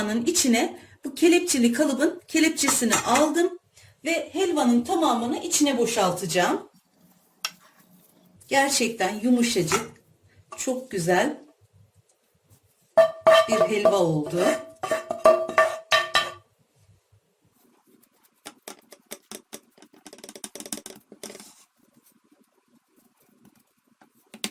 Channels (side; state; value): both; identical; correlation 1.00